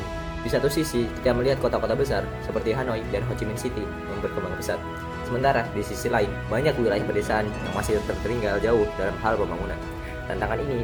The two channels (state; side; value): identical; both; correlation 1.00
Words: Di satu sisi, kita melihat kota-kota besar seperti Hanoi dan Ho Chi Minh City yang berkembang pesat. Sementara di sisi lain, banyak wilayah pedesaan yang masih tertinggal jauh dalam hal pembangunan. Tantangan